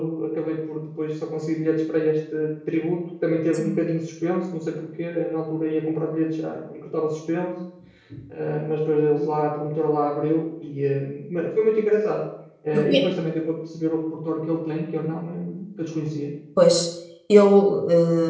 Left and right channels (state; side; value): identical; both; correlation 1.00